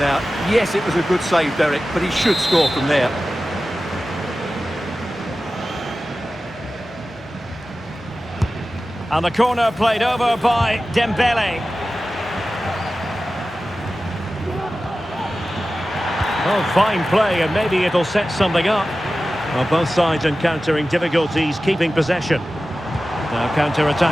Yes, it was a good save, Derek, but he should score from there. And the corner played over by Dembele. Oh, fine play, and maybe it'll set something up. Well, both sides encountering difficulties keeping possession. Now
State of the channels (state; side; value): normal; both; correlation 0.95